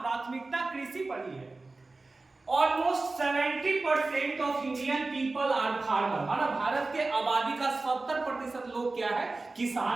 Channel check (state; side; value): quieter; left; 3.4 dB